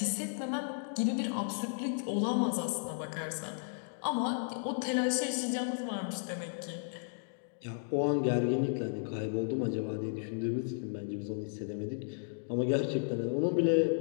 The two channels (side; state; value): right; silent; digital silence